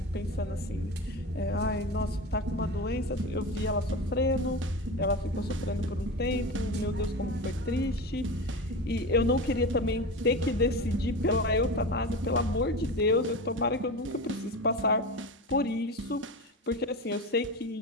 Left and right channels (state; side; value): normal; both; correlation 0.26